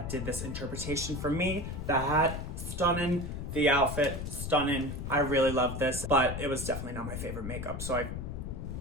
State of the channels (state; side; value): noise; left; rumble, 6 dB below the sound